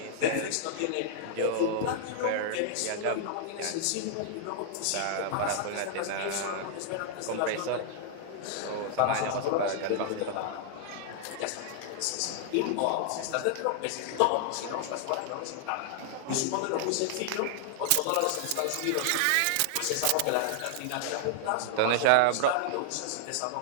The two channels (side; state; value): both; different; correlation -0.01